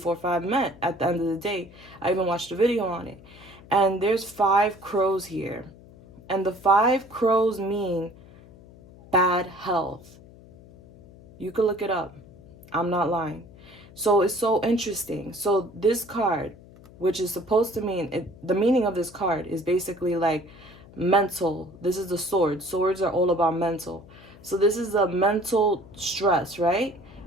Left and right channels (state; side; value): noise; left; hum, 22 dB below the sound